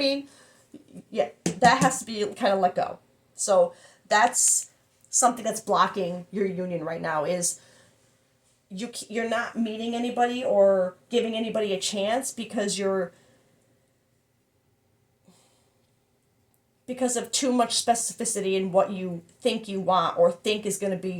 Yeah, that has to be kind of let go. So that's something that's blocking your union right now, is you're not meeting anybody or giving anybody a chance because of too much specificity in what you think you want or think is going to be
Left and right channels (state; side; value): identical; both; correlation 1.00